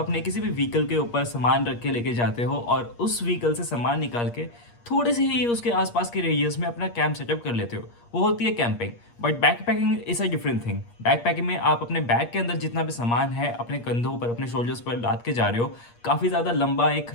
किसी भी व्हीकल के ऊपर सामान रख के लेके जाते हो और उस व्हीकल से सामान निकाल के थोड़े से ही उसके आसपास के रेडियस में अपना कैंप सेटअप कर लेते हो, वो होती है camping. But backpacking is a different thing. Backpacking में आप अपने बैग के अंदर जितना भी सामान है अपने कंधों पर, अपने शोल्डर्स पर लाद के जा रहे हो। काफ़ी ज़्यादा लंबा एक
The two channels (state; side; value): late; right; 8.5 ms